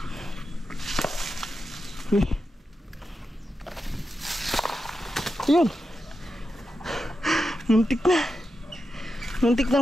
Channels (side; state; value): both; normal; correlation 0.89